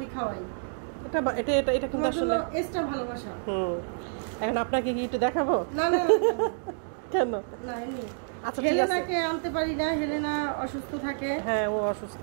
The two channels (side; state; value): left; silent; digital silence